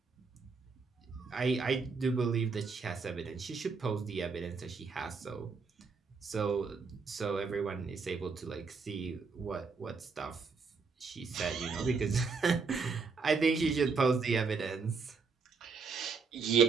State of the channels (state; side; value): quieter; left; 4.9 dB